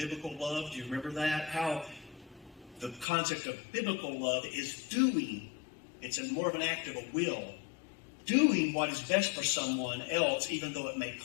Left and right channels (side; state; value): right; drops out; at 3.1 s